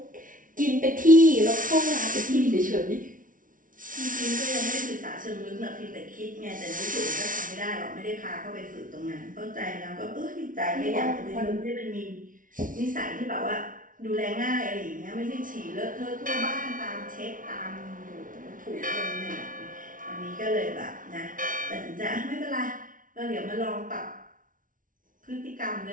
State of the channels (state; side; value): late; left; 0.38 ms